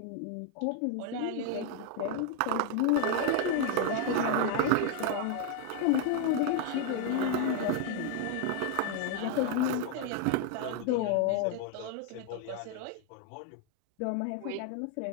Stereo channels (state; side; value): different; both; correlation 0.01